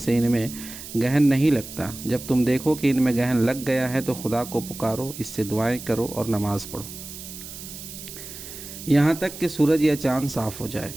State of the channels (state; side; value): noise; right; hiss, 12 dB below the sound